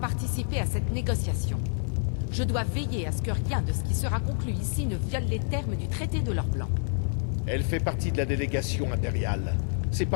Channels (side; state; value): right; silent; 59 dB below the other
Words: à cette négociation. Je dois veiller à ce que rien de ce qui sera conclu ici ne viole les termes du traité de l'or blanc. Elle fait partie de la délégation impériale. C'est